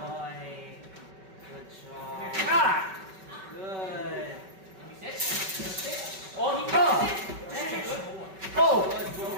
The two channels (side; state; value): left; late; 5.2 ms